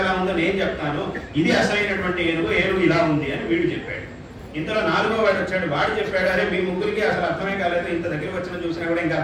ఎలా ఉందో నేను చెప్తాను, ఇది అసలైనటువంటి ఏనుగు ఇలా ఉంది అని వీడు చెప్పాడు. ఇంతలో 4వ వాడు వచ్చాడు. వాడు చెప్పాడు, అరే మీ ముగ్గురికి అసలు అర్థమే కాలేదు, ఇంత దగ్గరికి వచ్చిన చూసినా కూడా ఇంకా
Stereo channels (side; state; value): both; identical; correlation 1.00